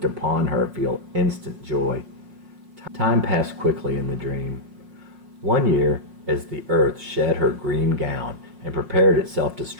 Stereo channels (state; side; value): late; left; 5.5 ms